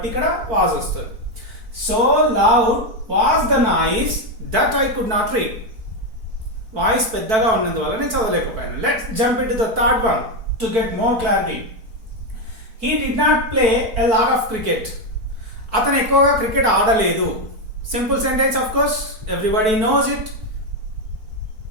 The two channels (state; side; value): late; left; 4.5 ms